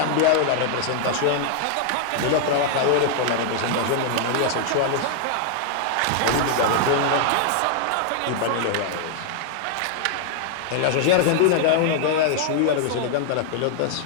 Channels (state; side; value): different; both; correlation 0.00